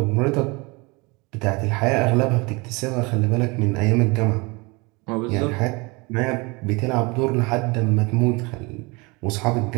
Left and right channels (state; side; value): quieter; left; 26.7 dB